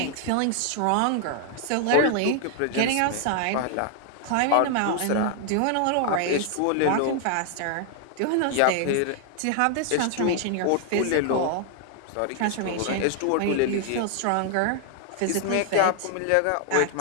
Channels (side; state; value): both; different; correlation 0.00